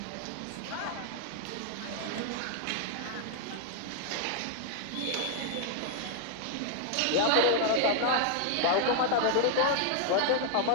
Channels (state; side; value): different; both; correlation 0.00